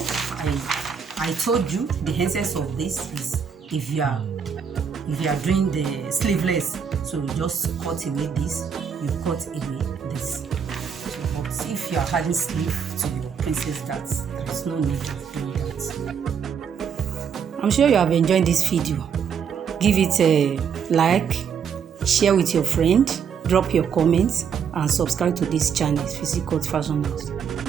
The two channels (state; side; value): quieter; left; 7.1 dB